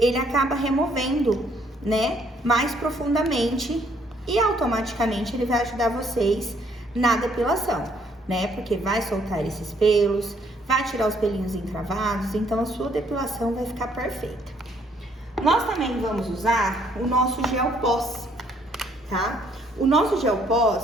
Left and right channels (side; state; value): both; normal; correlation 0.66